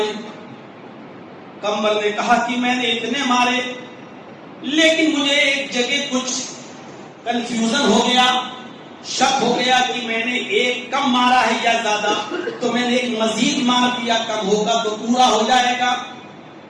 قمبر نے کہا کہ میں نے اتنے مارے، لیکن مجھے ایک جگہ کچھ کنفیوژن ہو گیا، شک ہو گیا کہ میں نے ایک کم مارا ہے یا زیادہ، تو میں نے ایک مزید مار دیا، کم ہوگا تو پورا ہو جائے گا۔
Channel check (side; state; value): both; identical; correlation 1.00